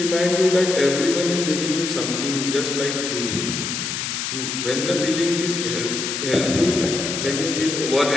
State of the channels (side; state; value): left; noise; hiss, 3 dB below the sound